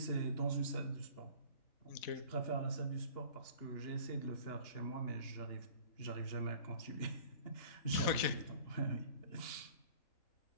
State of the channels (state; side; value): late; right; 4.1 ms